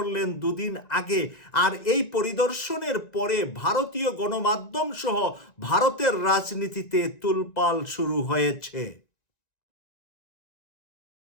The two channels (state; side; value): late; right; 1.9 ms